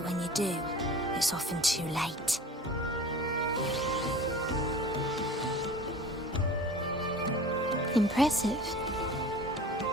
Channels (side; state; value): both; normal; correlation 0.40